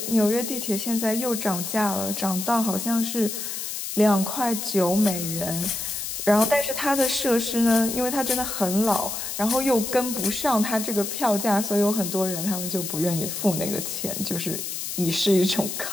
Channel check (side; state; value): left; noise; hiss, 5 dB below the sound